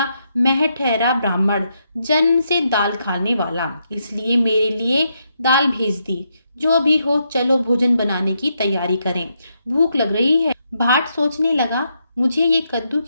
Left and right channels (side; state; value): both; inverted; correlation -0.79